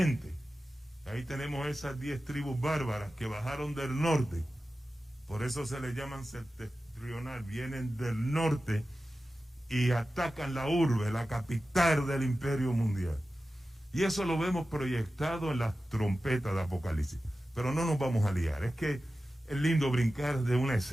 Ahí tenemos esas 10 tribus bárbaras que bajaron del norte. Por eso se les llaman septentrional. Vienen del norte y atacan la urbe, la capital del imperio mundial. Y eso lo vemos proyectado en las trompetas de Apocalipsis. Pero no nos vamos a liar. Es que es lindo brincar de una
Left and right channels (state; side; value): normal; both; correlation 0.94